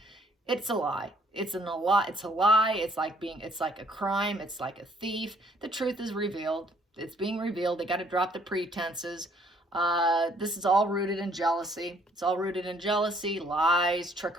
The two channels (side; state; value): both; normal; correlation 0.63